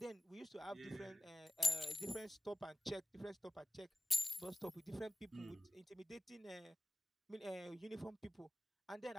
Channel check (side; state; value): both; normal; correlation 0.96